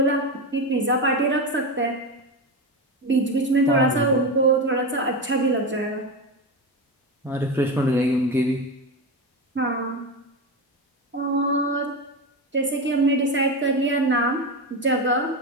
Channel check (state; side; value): normal; both; correlation 0.17